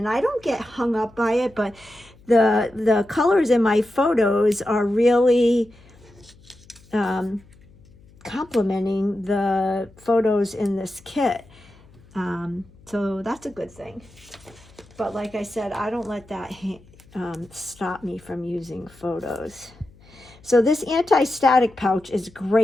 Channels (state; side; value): noise; left; hum, 26 dB below the sound